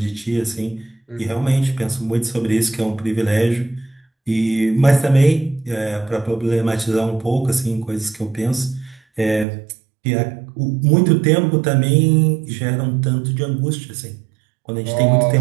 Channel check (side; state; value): left; drops out; at 9.5 s